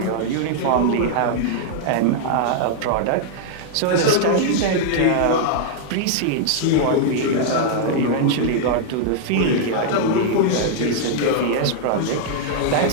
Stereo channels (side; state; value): both; different; correlation -0.01